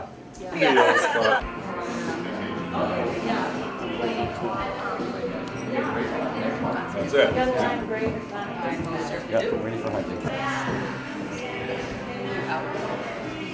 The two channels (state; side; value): identical; both; correlation 1.00